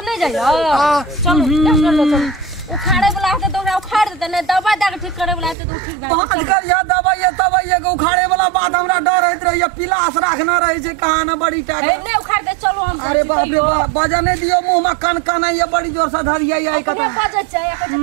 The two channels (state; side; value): drops out; left; at 5.6 s